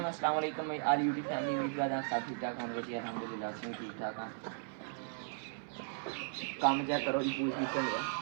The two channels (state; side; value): silent; left; 53 dB below the other